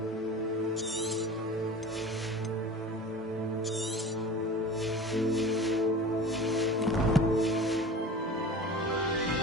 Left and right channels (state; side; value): normal; both; correlation 0.37